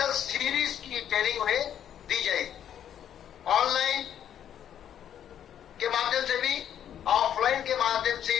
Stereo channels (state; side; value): quieter; right; 9.8 dB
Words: सीरीज की ट्रेनिंग उन्हें दी जाएगी, ऑनलाइन के माध्यम से भी, ऑफलाइन के माध्यम से